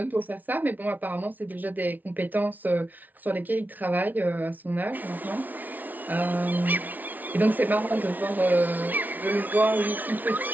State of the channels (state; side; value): late; left; 0.080 ms